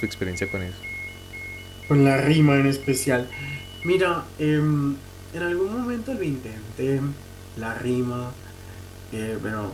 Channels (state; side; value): identical; both; correlation 1.00